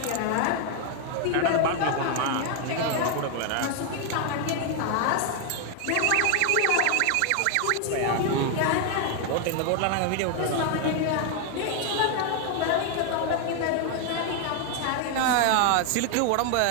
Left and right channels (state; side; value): different; both; correlation 0.01